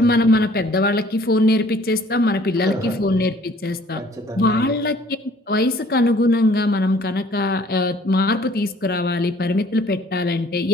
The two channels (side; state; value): both; normal; correlation 0.56